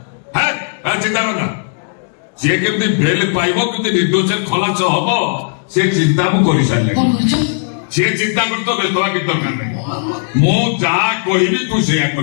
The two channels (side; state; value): right; silent; digital silence